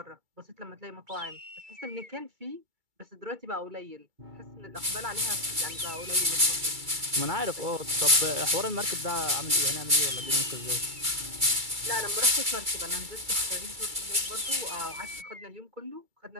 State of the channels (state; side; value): late; left; 2.3 ms